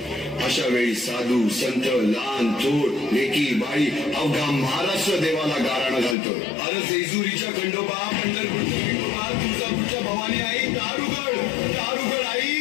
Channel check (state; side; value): drops out; right; at 6.2 s